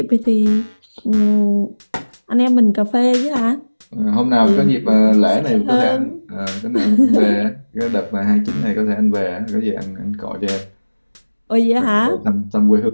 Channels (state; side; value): inverted; both; correlation -1.00